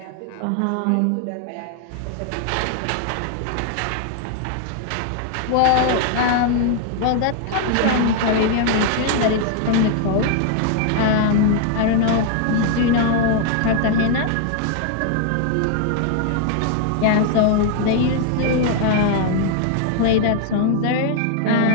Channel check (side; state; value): both; different; correlation 0.00